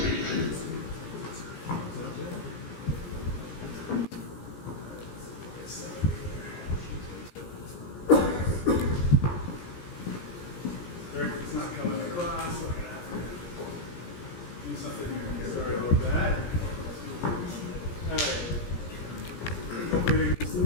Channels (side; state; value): right; late; 17 ms